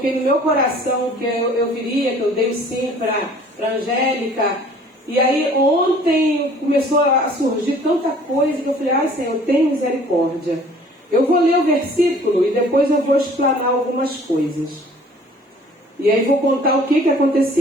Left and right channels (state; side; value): normal; both; correlation 0.52